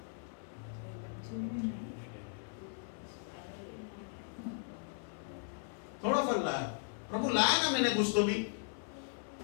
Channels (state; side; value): silent; right; 53 dB below the other